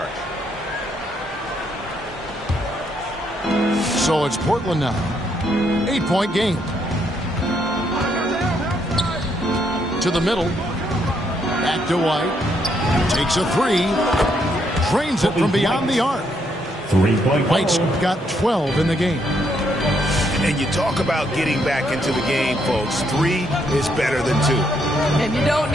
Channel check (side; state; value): both; normal; correlation 0.74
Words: So it's Portland now. 8-point game. To the middle. Back to White. Takes a three. Drains it from beyond the arc. 3-point. White's got 12 in the game. And you talk about getting back into the game, folks. 3 is better than 2. And you don't